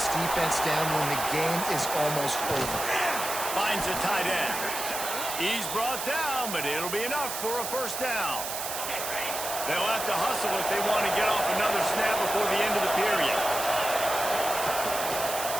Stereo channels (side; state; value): right; noise; hiss, 5 dB below the sound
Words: defense down when the game is almost over. Finds a tight end. He's brought down, but it'll be enough for a first down. They'll have to hustle if they want to get off another snap before the end of the period.